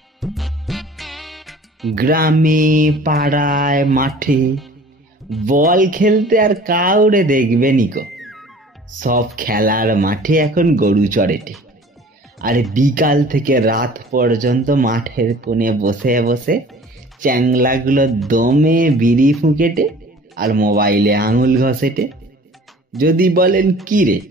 গ্রামে পাড়ায় মাঠে বল খেলতে আর কাউরে দেখবে নিকো। সব খেলার মাঠে এখন গরু চড়েটে। আর বিকাল থেকে রাত পর্যন্ত মাঠের কোণে বসে বসে চ্যাংলাগুলো দমে বিড়ি ফুঁকেটে আর মোবাইলে আঙুল ঘষেটে। যদি বলেন কি রে,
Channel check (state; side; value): normal; both; correlation 0.47